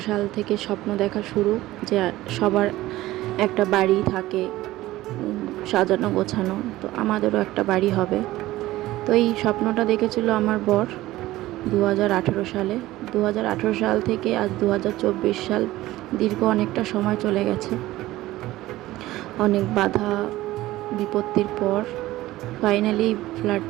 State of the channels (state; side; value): quieter; left; 16.8 dB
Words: সাল থেকে স্বপ্ন দেখা শুরু, যে সবার একটা বাড়ি থাকে সাজানো গোছানো, তো আমাদেরও একটা বাড়ি হবে। তো এই স্বপ্নটা দেখেছিল আমার বর 2018 সালে। 2018 সাল থেকে আজ 2024 সাল, দীর্ঘ অনেকটা সময় চলে গেছে। অনেক বাধা বিপত্তির পর ফাইনালি